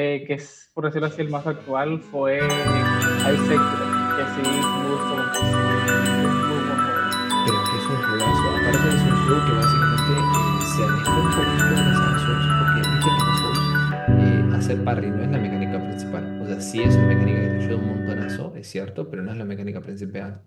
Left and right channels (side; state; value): both; identical; correlation 1.00